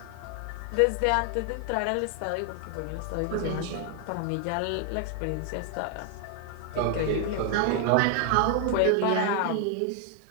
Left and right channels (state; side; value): different; both; correlation 0.00